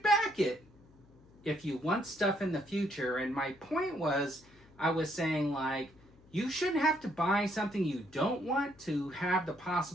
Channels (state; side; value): noise; left; hum, 26 dB below the sound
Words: back it if you want stuff in the future. And my point was, I was saying, like, you shouldn't have to buy something you don't want to have the